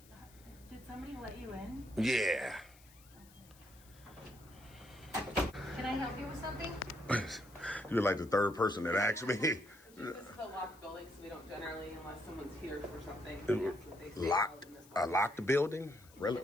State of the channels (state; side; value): noise; left; hiss, 25 dB below the sound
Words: Did somebody let you in? Yeah. Can I help you with something? You're like the third person that asked me. This is a locked building, so we don't generally, unless someone's here for something. That's what they say Locked? in this A locked building? Really?